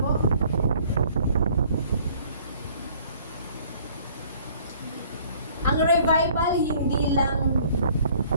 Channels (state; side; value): inverted; both; correlation -0.56